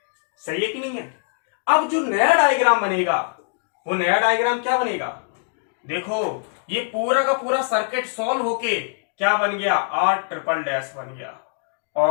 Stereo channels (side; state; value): right; silent; digital silence